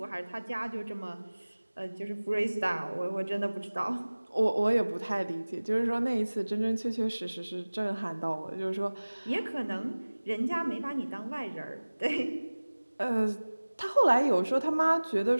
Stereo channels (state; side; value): inverted; both; correlation -1.00